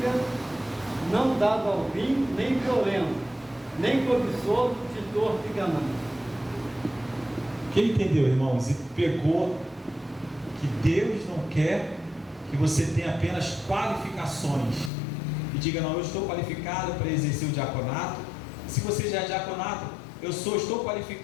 não dado ao vinho, nem violento, nem cobiçoso, titor de ganância. Quem entendeu, irmãos, e pegou que Deus não quer que você tenha apenas qualificações e diga: não, eu estou qualificado para exercer o diaconato. Se você já é diaconato, estou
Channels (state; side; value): drops out; right; at 14.9 s